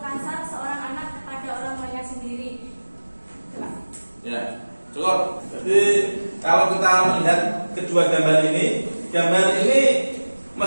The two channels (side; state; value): both; inverted; correlation -1.00